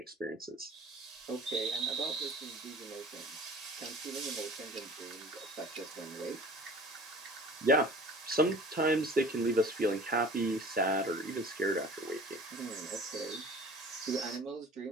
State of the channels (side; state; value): both; normal; correlation 0.44